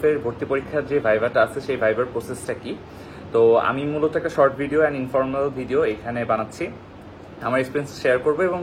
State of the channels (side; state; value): both; identical; correlation 1.00